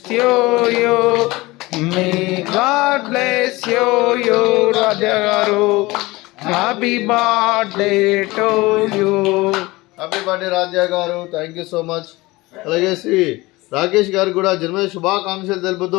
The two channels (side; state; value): right; quieter; 21.2 dB